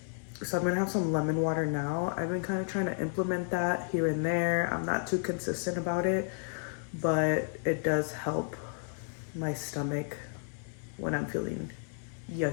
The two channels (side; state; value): right; silent; 56 dB below the other